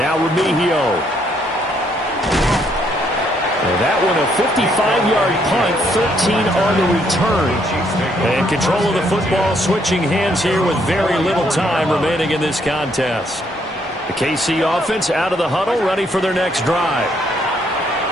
Remigio. And that one a 55-yard punt, 13 on the return. And control of the football switching hands here with very little time remaining in this contest. The KC offense out of the huddle, ready for their next drive.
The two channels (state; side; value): normal; both; correlation 0.71